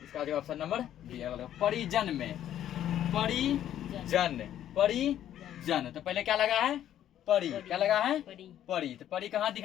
इसका जो ऑप्शन नंबर बी है। परिजन में, परिजन, परिजन, तो पहले क्या लगा है, परी, क्या लगा है, परी, तो परी कहाँ दिख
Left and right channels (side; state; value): right; quieter; 11.3 dB